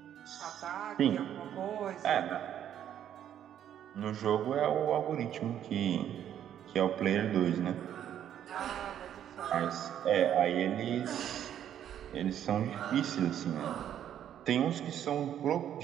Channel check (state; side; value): quieter; left; 10.2 dB